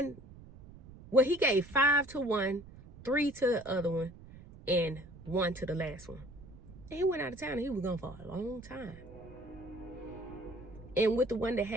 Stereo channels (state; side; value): noise; right; rumble, 18 dB below the sound